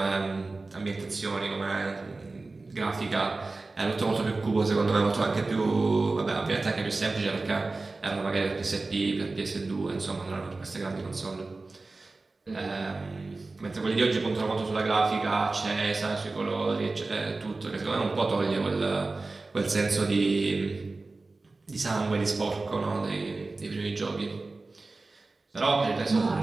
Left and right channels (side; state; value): left; quieter; 3.5 dB